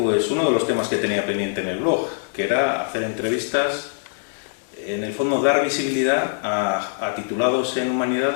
uno de los temas que tenía pendiente en el blog, que era hacer entrevistas, en el fondo dar visibilidad a titulados en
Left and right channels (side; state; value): right; silent; 64 dB below the other